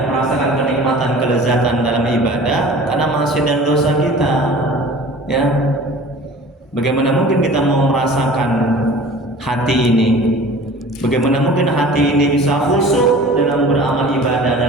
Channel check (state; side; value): normal; both; correlation 0.43